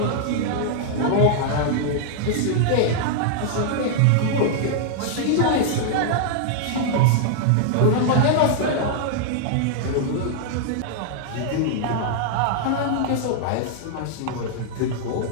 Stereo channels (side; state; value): both; different; correlation -0.01